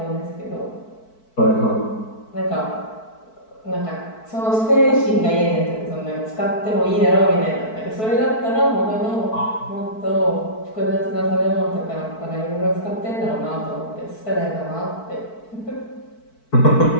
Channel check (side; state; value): right; late; 4.6 ms